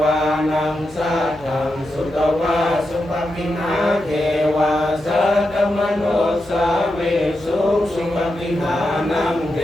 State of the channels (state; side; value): noise; left; hum, 24 dB below the sound